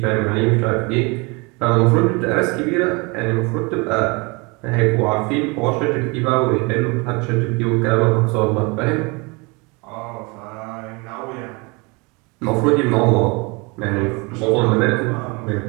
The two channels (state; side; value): quieter; left; 28.2 dB